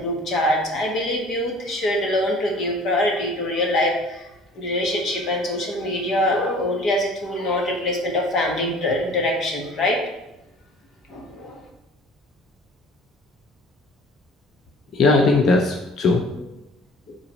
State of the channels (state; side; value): normal; both; correlation 0.47